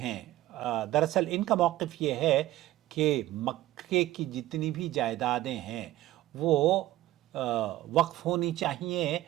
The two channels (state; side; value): quieter; left; 15.6 dB